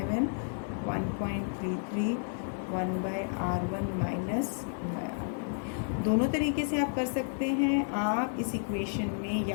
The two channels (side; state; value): right; silent; 57 dB below the other